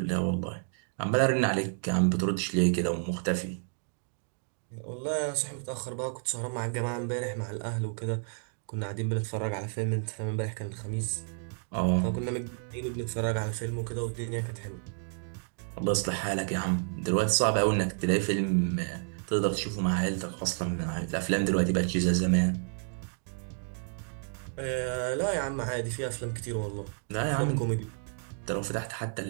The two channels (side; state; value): left; silent; 57 dB below the other